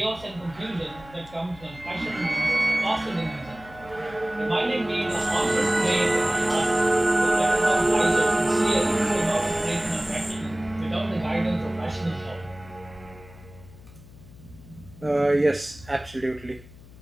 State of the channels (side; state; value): left; noise; hum, 20 dB below the sound